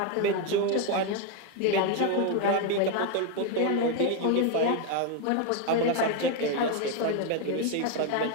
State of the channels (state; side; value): different; both; correlation 0.02